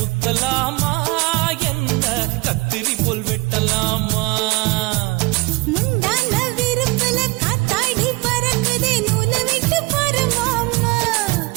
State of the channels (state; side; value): quieter; left; 25.5 dB